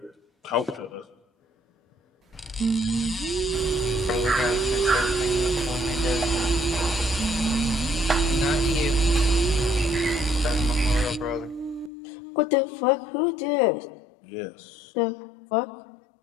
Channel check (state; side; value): drops out; right; at 11.9 s